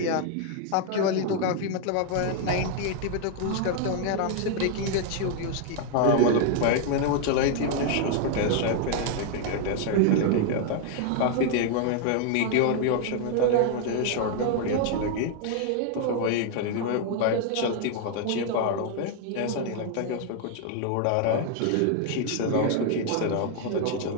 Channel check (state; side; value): different; both; correlation 0.00